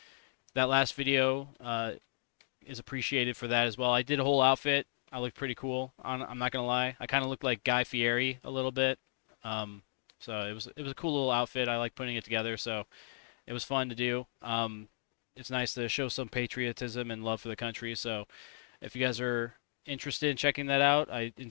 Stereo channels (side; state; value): right; silent; digital silence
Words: that last video is appreciated for that as well. I did a whole outfit. I looked pretty cool. I'm not gonna lie. I kind of looked like Guy Fieri a little bit. Um, so it was a cool little outfit. I like putting it together. So it was fun to do. It's nice to show some patriotism and love for the country. So if you guys are interested in checking that out, I